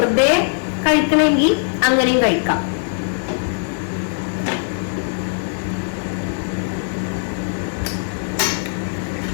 കഴിക്കണമെങ്കിൽ അങ്ങനെയും കഴിക്കാം.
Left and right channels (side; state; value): right; silent; digital silence